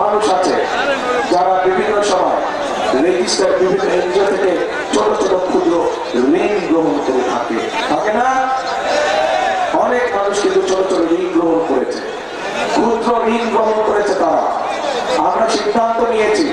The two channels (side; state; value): both; identical; correlation 1.00